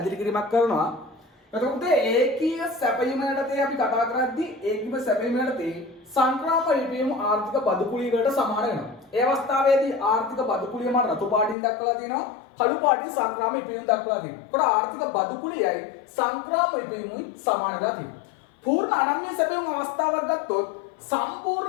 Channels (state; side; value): drops out; right; at 11.6 s